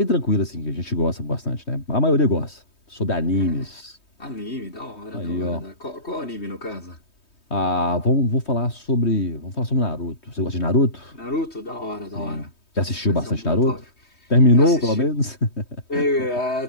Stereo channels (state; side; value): late; right; 3.2 ms